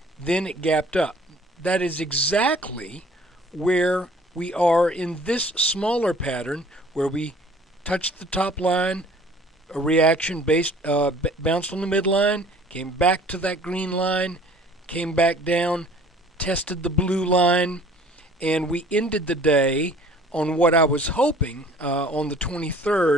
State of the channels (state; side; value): normal; both; correlation 0.52